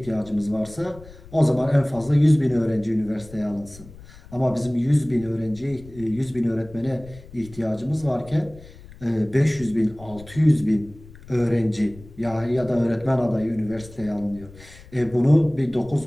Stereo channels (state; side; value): noise; left; rumble, 20 dB below the sound